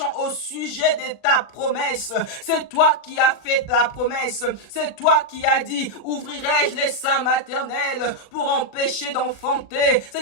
au sujet de ta promesse, c'est toi qui as fait ta promesse. C'est toi qui as dit, ouvrirai-je les seins maternels pour empêcher d'enfanter.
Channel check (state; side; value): late; right; 39 ms